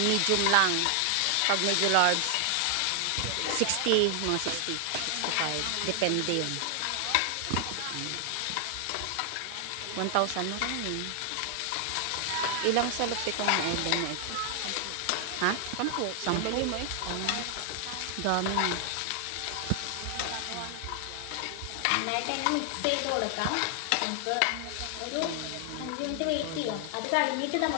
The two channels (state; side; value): different; both; correlation 0.00